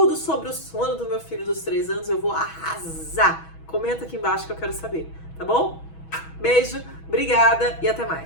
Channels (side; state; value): right; late; 6.2 ms